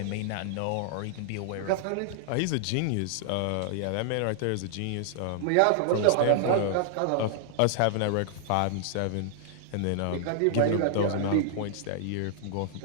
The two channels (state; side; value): different; both; correlation -0.01